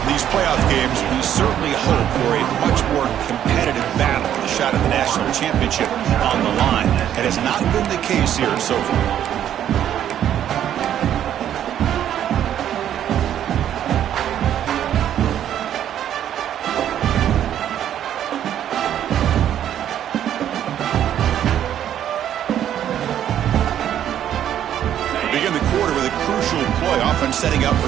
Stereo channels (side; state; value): left; quieter; 10.5 dB